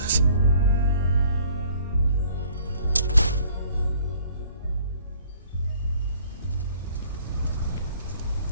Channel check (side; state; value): both; inverted; correlation -0.56